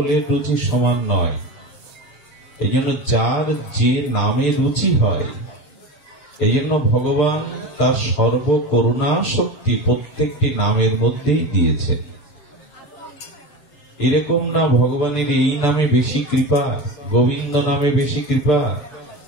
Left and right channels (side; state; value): right; late; 6.8 ms